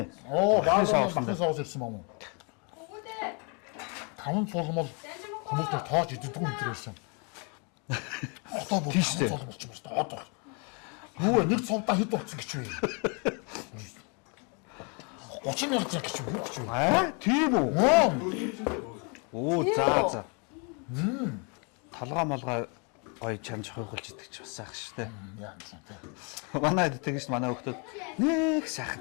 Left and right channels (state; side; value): quieter; right; 34.9 dB